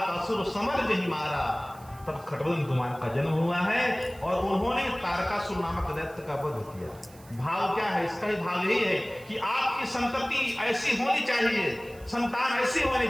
समर जहि मारा। तब खटबदन कुमार का जन्म हुआ है और उन्होंने तारकासुर नामक दैत्य का वध किया। भाव क्या है? इसका ही भाव यही है कि आपकी संतति ऐसी होनी चाहिए, संतान ऐसी होनी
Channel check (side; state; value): right; noise; hiss, 24 dB below the sound